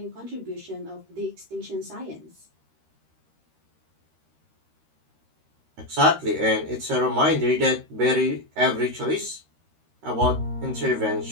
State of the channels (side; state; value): left; late; 13 ms